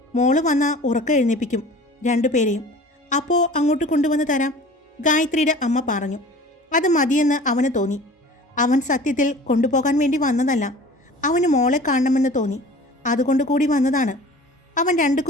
മോള് വന്നാൽ ഉറക്കം എഴുന്നേൽപ്പിക്കും 2 പേരെയും. അപ്പോൾ അങ്ങോട്ട് കൊണ്ടുവന്ന് തരാം, ഗായത്രിയുടെ അമ്മ പറഞ്ഞു. അത് മതിയെന്ന് അവന് തോന്നി. അവൻ സത്യത്തിൽ കൊണ്ടുപോകാൻ വേണ്ടി വന്നതല്ല, അവന് മോളെ കാണണമെന്ന് തോന്നി, അതുകൊണ്ട് കൂടി വന്നതാണ്. അവൻ 2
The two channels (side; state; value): both; normal; correlation 0.43